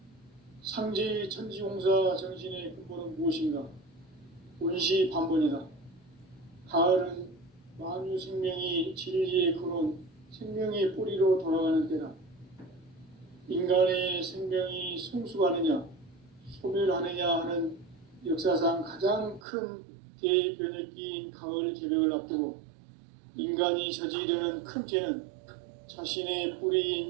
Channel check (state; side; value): drops out; left; at 19.4 s